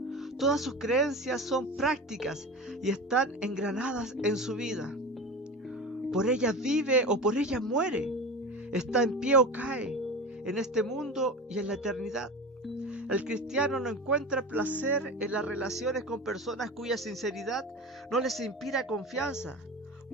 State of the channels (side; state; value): both; normal; correlation 0.29